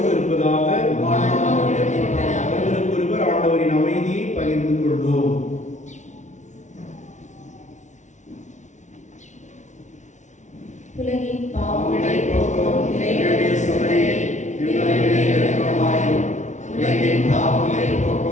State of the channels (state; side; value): late; right; 0.35 ms